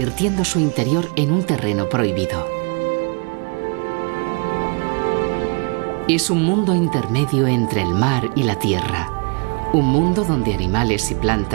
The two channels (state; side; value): quieter; left; 35.4 dB